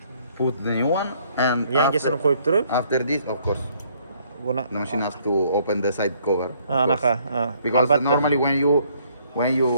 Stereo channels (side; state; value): both; inverted; correlation -0.65